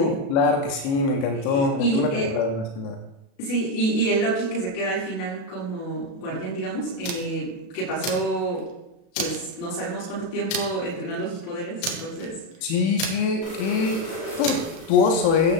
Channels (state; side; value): late; right; 36 ms